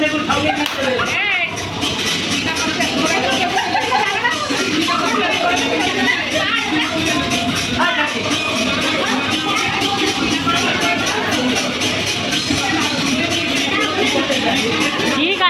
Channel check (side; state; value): both; identical; correlation 1.00